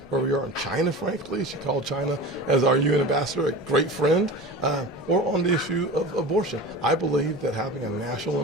where we are in China, frankly. She called China, as our UN ambassador, a great friend, or on the issue of abortion. I believe that having a national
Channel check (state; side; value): normal; both; correlation 0.32